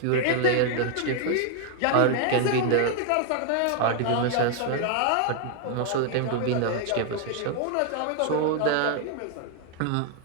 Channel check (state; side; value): different; both; correlation 0.00